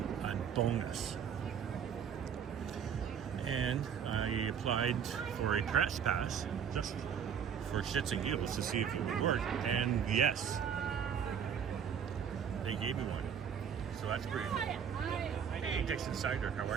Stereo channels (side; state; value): left; quieter; 7.8 dB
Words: bonus. And I applied for a press pass just for shits and giggles to see if it would work. And yes, they gave me one. So that's great. Hey, Dixon Cider, how